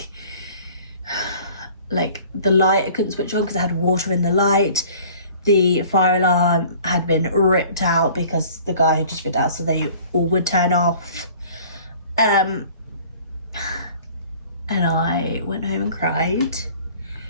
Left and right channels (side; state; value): both; inverted; correlation -0.50